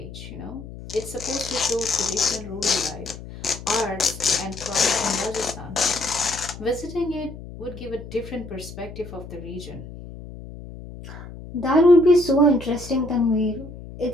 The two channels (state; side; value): noise; left; hum, 13 dB below the sound